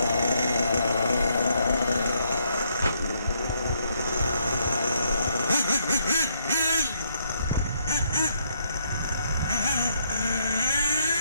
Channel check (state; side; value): inverted; both; correlation -0.73